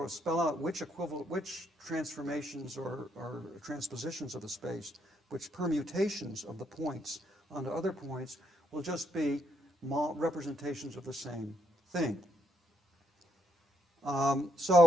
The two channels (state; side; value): normal; both; correlation 0.76